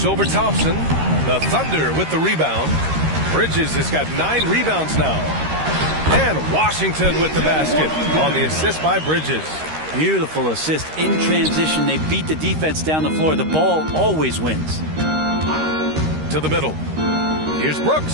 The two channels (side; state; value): left; late; 13 ms